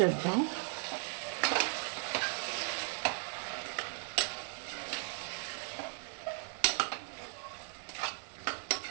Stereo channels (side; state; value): left; silent; 53 dB below the other